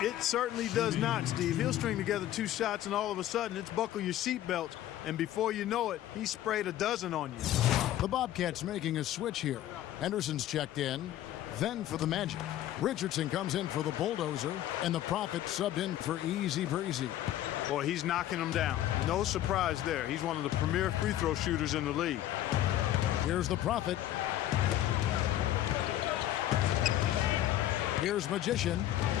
It certainly does not, Steve. He'll string together 2 shots, and all of a sudden, it's buckle your seatbelts. And before you know it, he sprayed a dozen on you. The Bobcats making a switch here. Henderson's checked in. Then for the Magic, Richardson comes in for the Bulldozer, and the Prophet subbed in for Easy Breezy. Boy, he's knocking them down. No surprise there. He's one of the premier free throw shooters in the league. Here's the Prophet. Here's Magician.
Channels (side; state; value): right; quieter; 12.9 dB